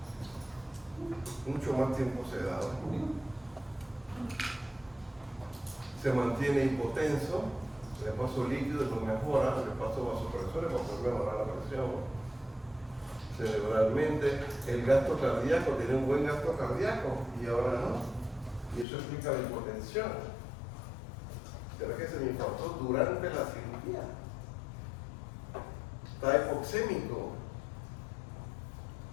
Mucho más tiempo sedado. Se mantiene hipotenso, le paso líquido no mejora, le paso vasopresores para poder mejorar la presión. Cerebralmente, el gasto cardíaco, tiene un buen gasto cardíaco y ahora no. Y eso explica la hipotensión. ¿Será que se me infartó durante la cirugía? Está hipoxémico.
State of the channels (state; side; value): drops out; right; at 18.9 s